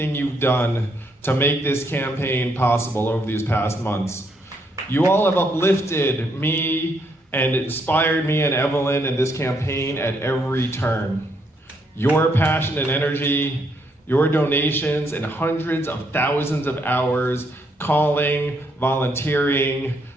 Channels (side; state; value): both; normal; correlation 0.74